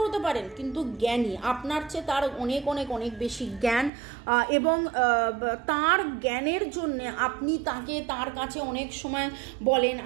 হতে পারেন কিন্তু জ্ঞানী, আপনার চেয়ে তার অনেক অনেক অনেক বেশি জ্ঞান, এবং তার জ্ঞানের জন্যে আপনি তার কাছে অনেক সময় বলেন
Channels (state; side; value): drops out; left; at 3.9 s